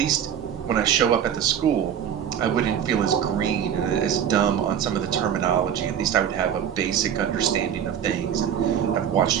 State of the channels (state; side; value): quieter; left; 9.0 dB